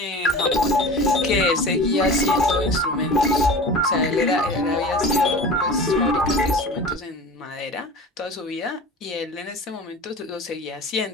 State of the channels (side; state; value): both; normal; correlation 0.35